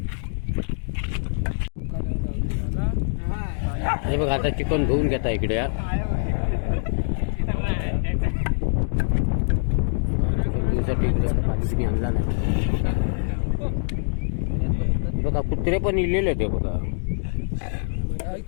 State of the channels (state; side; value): silent; right; digital silence